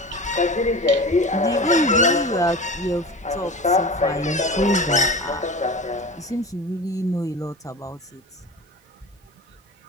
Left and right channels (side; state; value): both; normal; correlation 0.32